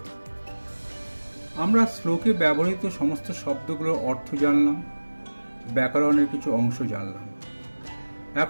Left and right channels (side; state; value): both; inverted; correlation -1.00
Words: আমরা শ্লোকে ব্যবহৃত সমস্ত শব্দগুলোর অর্থ জানলাম, ব্যাকরণের কিছু অংশ জানলাম।